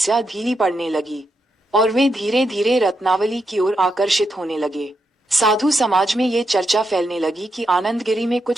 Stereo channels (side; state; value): both; normal; correlation 0.83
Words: धीमी पड़ने लगी और वे धीरे धीरे रत्नावली की ओर आकर्षित होने लगे। साधु समाज में ये चर्चा फैलने लगी कि आनंदगिरी में